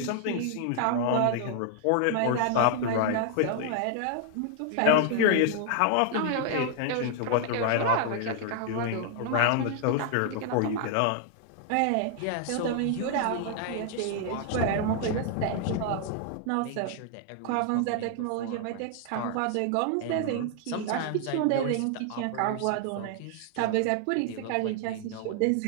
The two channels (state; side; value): different; both; correlation 0.00